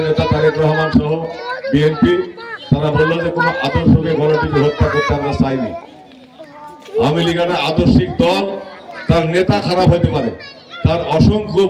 নেতা তারেক রহমান সহ বিএনপি তারা বললো যে কোনো আদর্শকে গণটিকে হত্যা করতে আমরা চাইনি। আওয়ামী লীগ একটা আদর্শিক দল, তার নেতা খারাপ হতে পারে, তার অসংখ্য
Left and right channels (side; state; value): both; identical; correlation 1.00